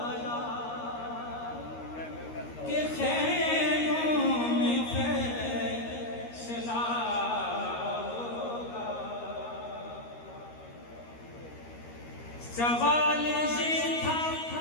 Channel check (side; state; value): right; late; 13 ms